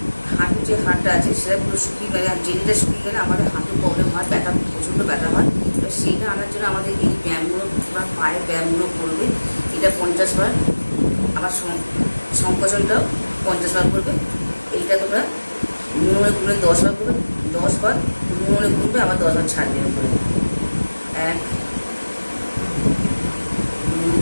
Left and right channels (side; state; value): both; inverted; correlation -1.00